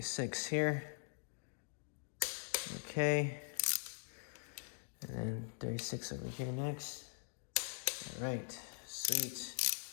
here. Okay. And then 36 over here next. All right, sweet.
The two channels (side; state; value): right; silent; digital silence